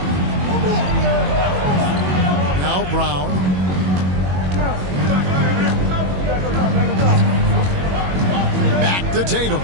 Now Brown. Back to Tatum.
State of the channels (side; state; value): left; late; 21 ms